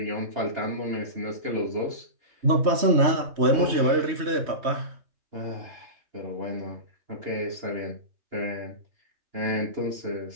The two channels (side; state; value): left; late; 3.1 ms